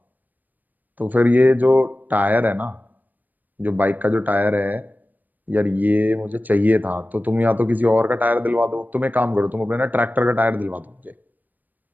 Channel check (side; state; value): left; late; 0.086 ms